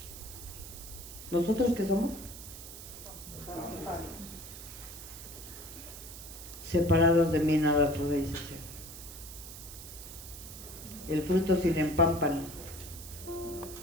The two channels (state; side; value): noise; right; hiss, 13 dB below the sound